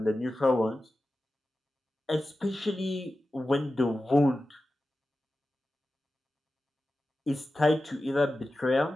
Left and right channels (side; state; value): both; normal; correlation 0.94